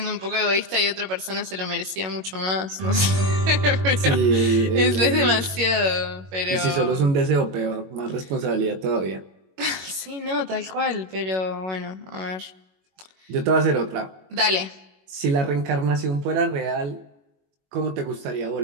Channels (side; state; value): left; late; 21 ms